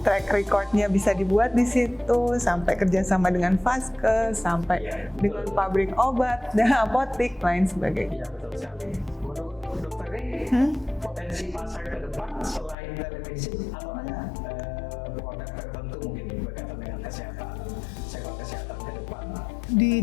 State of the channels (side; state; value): right; drops out; at 12.8 s